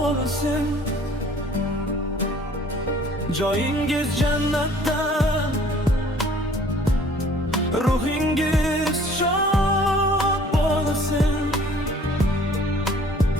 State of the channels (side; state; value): both; normal; correlation 0.54